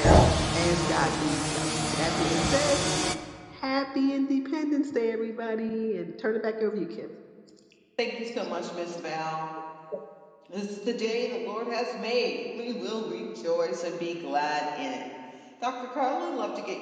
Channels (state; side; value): identical; both; correlation 1.00